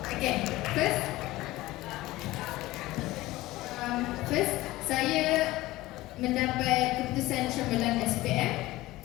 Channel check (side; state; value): right; quieter; 18.0 dB